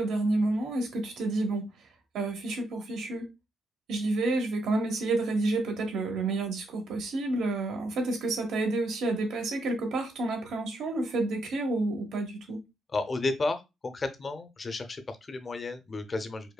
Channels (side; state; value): both; normal; correlation 0.79